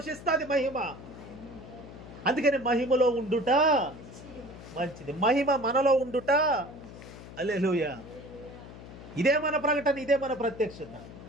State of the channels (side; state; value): left; noise; hum, 15 dB below the sound